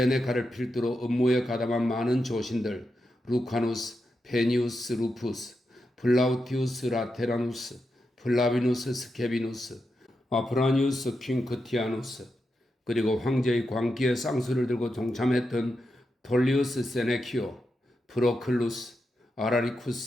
필두로 음모에 가담한 많은 조신들 루카누스, 페니우스 루푸스, 플라우티우스 라테라누스, 플라비누스 스케비누스, 아프라니우스 퀸크티아누스, 그리고 황제의 광기에 쌍수를 들고 동참했던 톨리우스 세네키오, 프로클루스,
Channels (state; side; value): normal; both; correlation 0.87